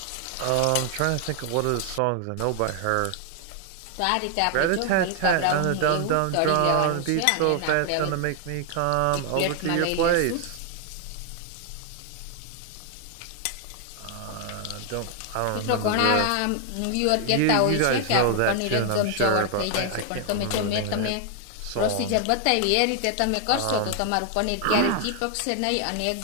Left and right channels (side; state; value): both; different; correlation 0.00